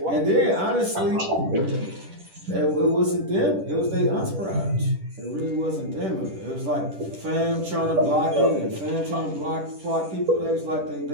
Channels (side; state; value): left; late; 10 ms